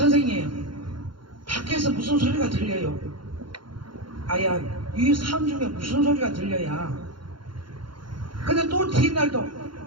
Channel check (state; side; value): late; left; 0.72 ms